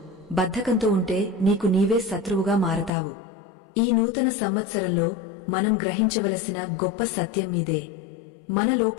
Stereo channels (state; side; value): drops out; right; at 2.9 s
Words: బద్ధకంతో ఉంటే నీకు నీవే శత్రువుగా మారతావు. ఈ నూతన సంవత్సరంలో మనం గ్రహించవలసిన గొప్ప సత్యం ఇదే. మన